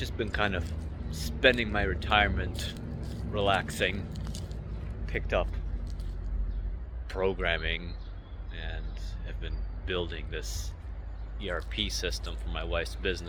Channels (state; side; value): identical; both; correlation 1.00